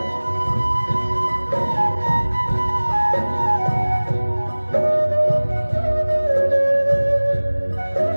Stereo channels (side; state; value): both; inverted; correlation -1.00